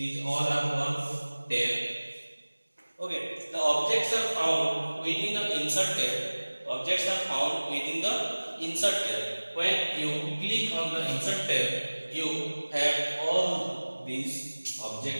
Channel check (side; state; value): both; inverted; correlation -1.00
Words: all are one tab. Okay, the objects are found within the insert tab. When you click on the insert tab, you have all these